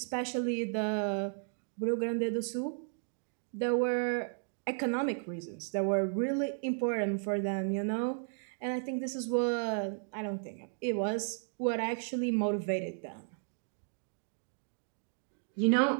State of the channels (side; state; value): left; silent; digital silence